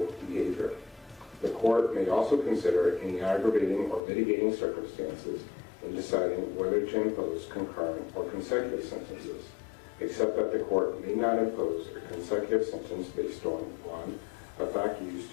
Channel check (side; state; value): right; drops out; at 4.0 s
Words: behavior. The court may also consider any aggravating or mitigating circumstances in deciding whether to impose concurrent or consecutive sentences, except that the court may not impose a consecutive sentence based on 1, a fact used